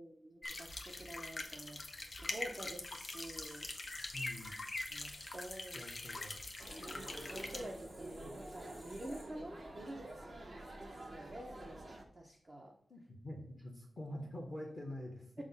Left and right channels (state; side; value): normal; both; correlation 0.93